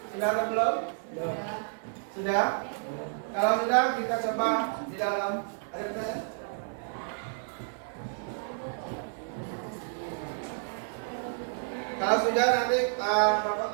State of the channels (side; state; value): left; silent; 58 dB below the other